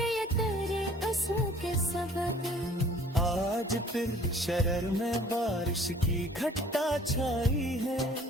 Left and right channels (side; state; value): both; normal; correlation 0.53